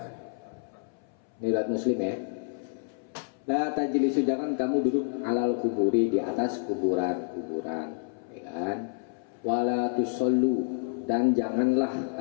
Ini riwayat Muslim ya. La tajlisu, jangan kamu duduk alal kuburi, di atas kuburan, ya kan? Wala tusallu, dan janganlah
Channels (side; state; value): right; silent; 59 dB below the other